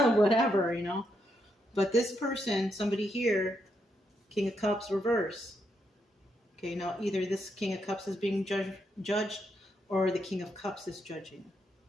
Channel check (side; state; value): both; normal; correlation 0.79